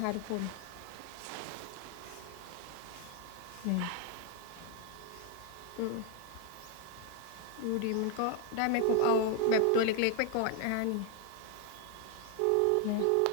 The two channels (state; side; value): different; both; correlation 0.00